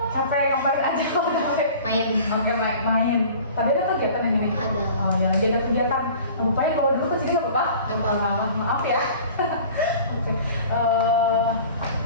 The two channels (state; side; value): inverted; both; correlation -0.44